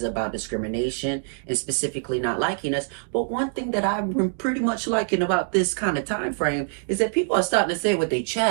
about discrimination and specifically not liking us. But one thing that I've been pretty much liking about this kind of time frame is that people are starting to say it with their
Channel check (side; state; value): left; silent; digital silence